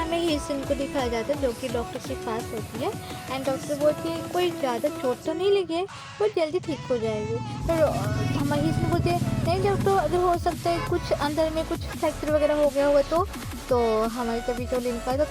ही सीन को दिखाया जाता है जो कि डॉक्टर के पास होती है एंड डॉक्टर बोलती है कोई ज़्यादा चोट तो नहीं लगी है, वो जल्दी ठीक हो जाएगी। तो हमारी सीन बोलती है नहीं डॉक्टर, अगर हो सकता है कुछ अंदर में कुछ फ्रैक्चर वगैरह हो गया होगा तो हमारी तभी जो लिनका तो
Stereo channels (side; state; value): both; identical; correlation 1.00